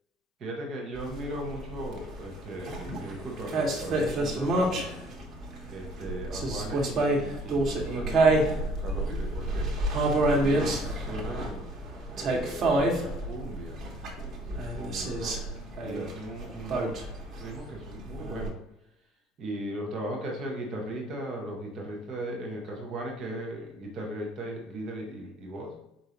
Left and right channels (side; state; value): both; normal; correlation 0.59